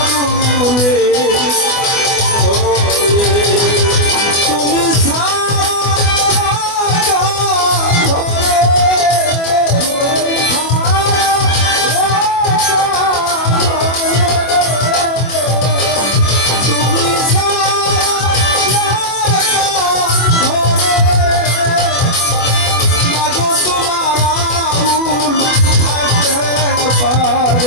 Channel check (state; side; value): late; right; 24 ms